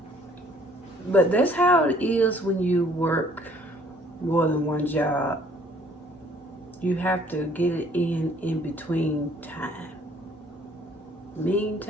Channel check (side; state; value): both; normal; correlation 0.59